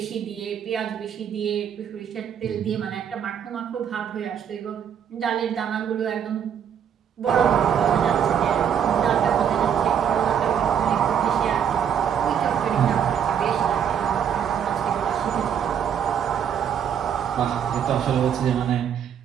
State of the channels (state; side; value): quieter; left; 8.5 dB